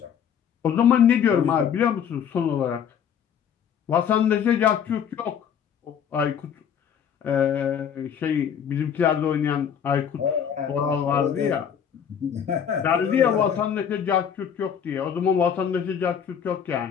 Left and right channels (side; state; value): right; quieter; 8.1 dB